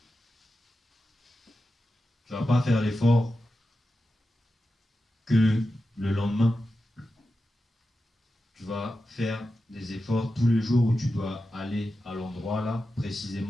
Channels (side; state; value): both; normal; correlation 0.91